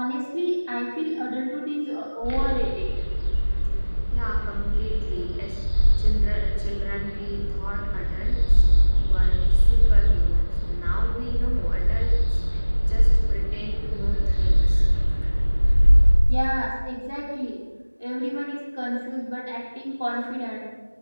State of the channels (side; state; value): both; inverted; correlation -1.00